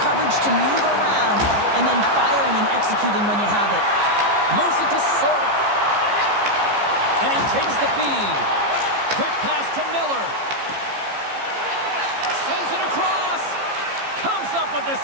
coverage to move around, and then firing and executing when you have it. Moves it to Sorda. And he takes the feed. Quick pass to Miller. Sends it across. Comes up with the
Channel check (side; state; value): left; late; 15 ms